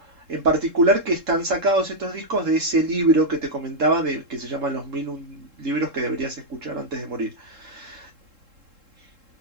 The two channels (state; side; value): late; left; 3.7 ms